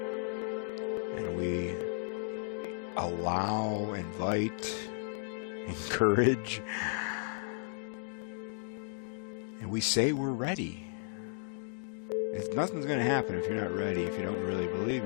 And we allow, invite, encourage, and we say we're ready. Nothing's going to happen if you're not ready, if you don't really believe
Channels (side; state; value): right; silent; digital silence